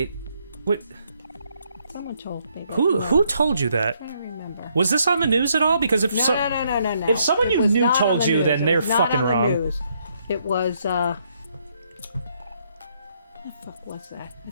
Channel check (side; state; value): both; inverted; correlation -0.72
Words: What? Someone told me. But Who told you that? I don't remember. Was this on the news at all? Because if No. if someone It you was knew not on told the you, news. then It they're was not fucking on the wrong. news. It was what the fuck was that? I